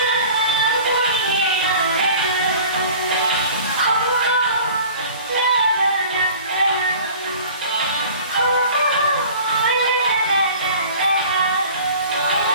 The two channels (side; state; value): both; inverted; correlation -0.44